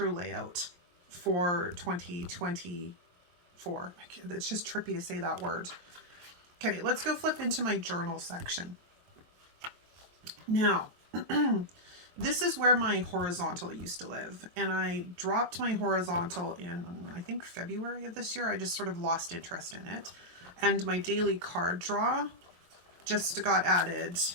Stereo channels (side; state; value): left; late; 23 ms